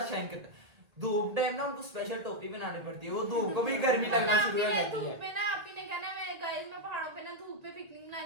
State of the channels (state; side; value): late; left; 1.8 ms